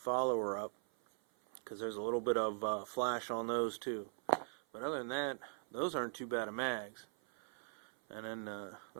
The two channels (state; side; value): silent; left; 51 dB below the other